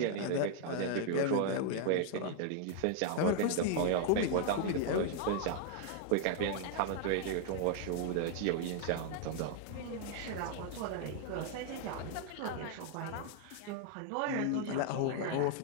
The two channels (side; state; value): both; different; correlation 0.00